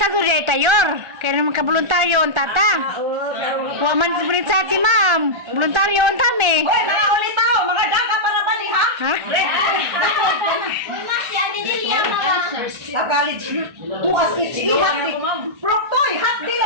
surya tayor. Kaya naman ka voluntaryo ang tata. Wa man sa sa si ma'am. Voluntaryo ang tami. Hoy, mga ulitaw, mga daga para ba ni ha? Ha? Red. Mas yan din liya mga. Sa college, tuas itchi, hati. Proktoy, hati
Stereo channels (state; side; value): late; left; 1.3 ms